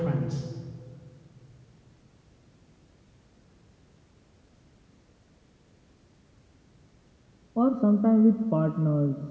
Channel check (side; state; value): both; identical; correlation 1.00